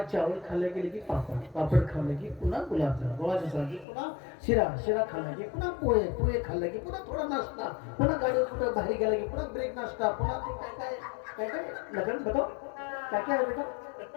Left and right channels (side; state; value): right; drops out; at 3.9 s